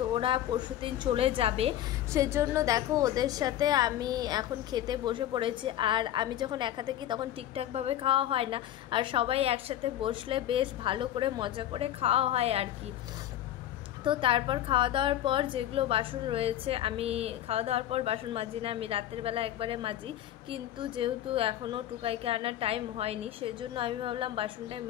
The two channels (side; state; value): right; quieter; 12.3 dB